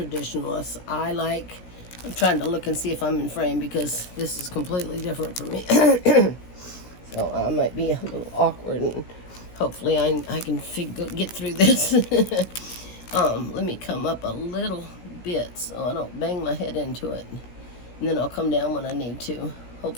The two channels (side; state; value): right; late; 16 ms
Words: I'm trying to look and see if I'm in frame because this is completely different for me. So I might be a little awkward, and hopefully I can get through this. Let me come up a little bit so I don't bang my head into it. And then I'll come down when I need to.